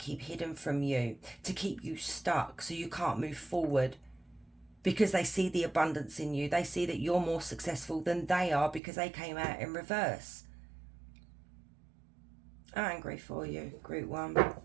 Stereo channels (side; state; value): left; drops out; at 8.8 s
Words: hidden from you to keep you stuck so you can't move forward, because they see the abundance in you. They see that you're more successful than they are because they came out in reverse. I'm angry for you, group 1.